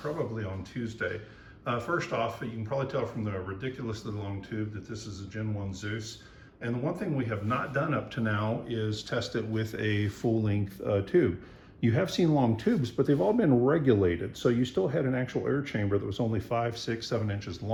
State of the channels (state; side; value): identical; both; correlation 1.00